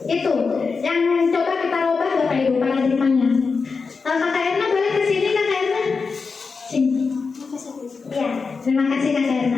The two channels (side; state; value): right; quieter; 4.8 dB